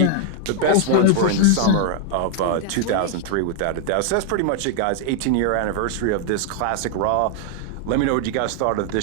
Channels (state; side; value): different; both; correlation 0.00